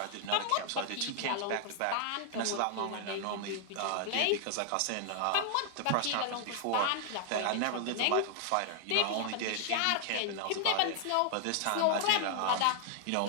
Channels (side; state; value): both; different; correlation 0.00